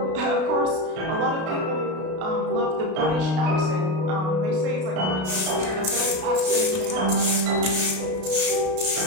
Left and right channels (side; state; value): left; late; 32 ms